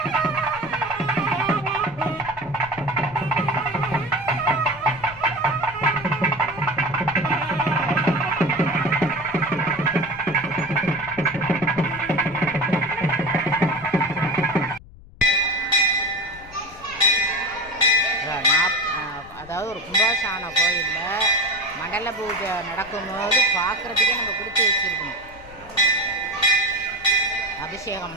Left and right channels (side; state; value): left; noise; rumble, 20 dB below the sound